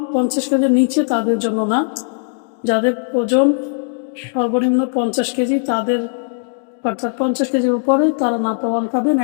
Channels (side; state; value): right; silent; digital silence